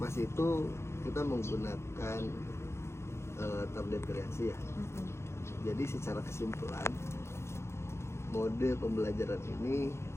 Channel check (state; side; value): late; right; 0.13 ms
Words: itu kita menggunakan tablet kreasi ya. Jadi secara kesimpulan mode pembelajaran ini